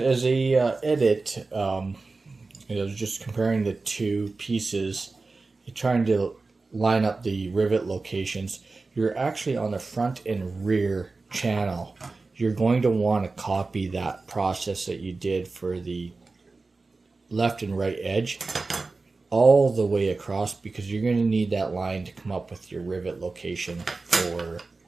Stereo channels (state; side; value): quieter; left; 3.7 dB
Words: a edit, I was just comparing the two pieces, trying to line up the rivet locations. You're actually on the front and rear channel. You're going to want to copy that process that you did for the left and right edge all the way across, because you're going to need that line to come up with your rivet location